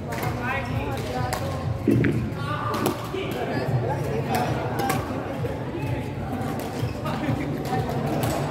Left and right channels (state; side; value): identical; both; correlation 1.00